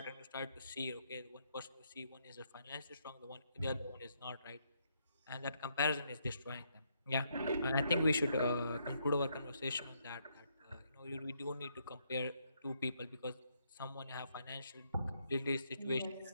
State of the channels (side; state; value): both; inverted; correlation -0.75